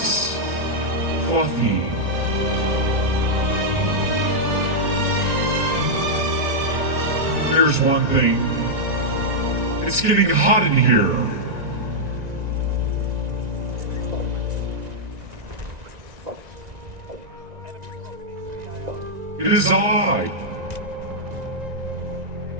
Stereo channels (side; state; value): left; late; 1.6 ms